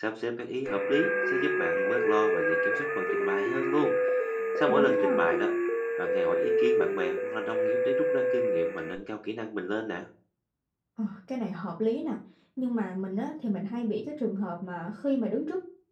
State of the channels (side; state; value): both; identical; correlation 1.00